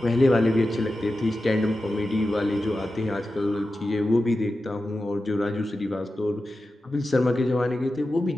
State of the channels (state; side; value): normal; both; correlation 0.92